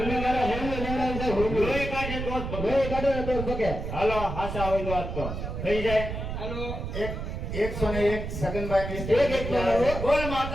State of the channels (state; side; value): noise; right; rumble, 5 dB below the sound